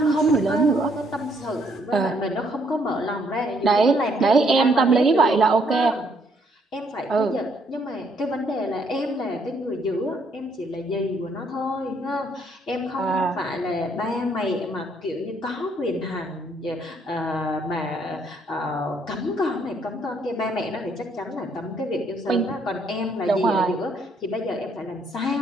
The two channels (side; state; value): both; normal; correlation 0.69